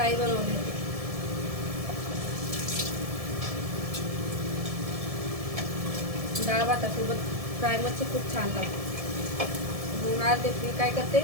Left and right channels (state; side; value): late; left; 1.7 ms